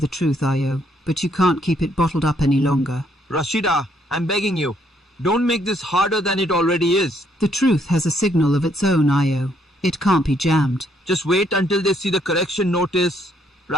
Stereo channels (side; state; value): both; normal; correlation 0.70